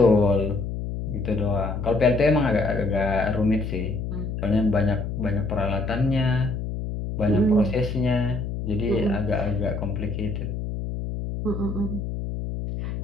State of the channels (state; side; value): noise; left; hum, 5 dB below the sound